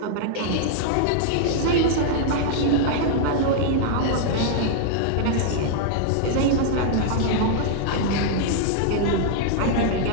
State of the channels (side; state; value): both; different; correlation -0.01